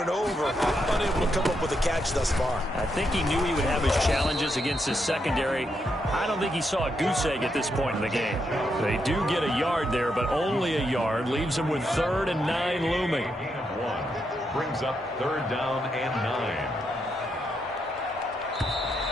over, unable to come up with a catch thus far. I think he knew he would have his challenges against his secondary. I don't think he saw a goose egg at this point in the game. They do get a yard there, but only a yard. Leaves him with 3rd and 9 looming. 1 brings up 3rd down and 9.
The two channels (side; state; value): both; normal; correlation 0.81